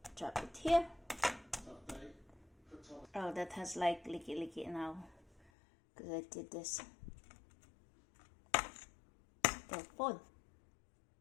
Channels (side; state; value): right; drops out; at 5.5 s